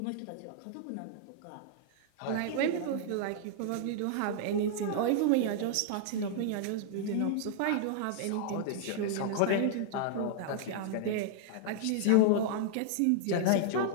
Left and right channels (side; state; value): both; different; correlation -0.01